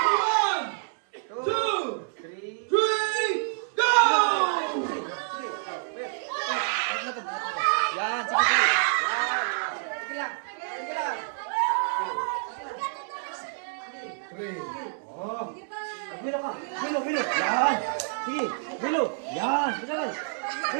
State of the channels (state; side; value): silent; left; 58 dB below the other